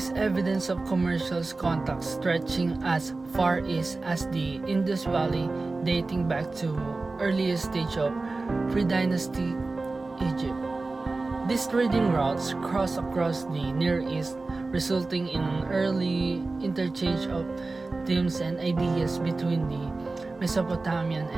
evidence of commercial contacts stretching as far east as the Indus Valley, dating back to earliest stage of pre-dynasty Egypt. These trading routes cross across the Near East, resulting in an early interchange of themes and ideas between the Mesopotamian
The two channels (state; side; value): quieter; left; 3.5 dB